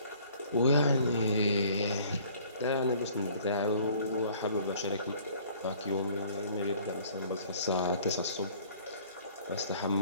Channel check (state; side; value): inverted; both; correlation -0.54